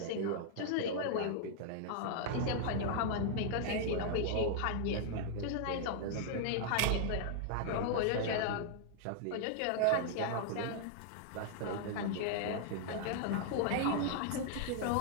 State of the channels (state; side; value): different; both; correlation -0.01